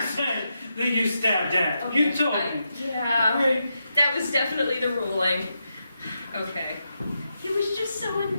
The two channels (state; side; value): inverted; both; correlation -0.85